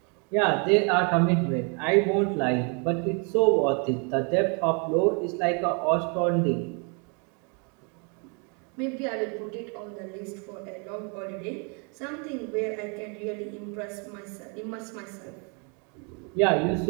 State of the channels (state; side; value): quieter; left; 35.8 dB